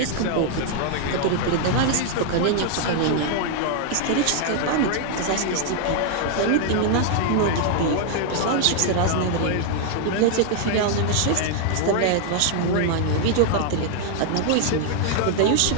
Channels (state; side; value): different; both; correlation 0.00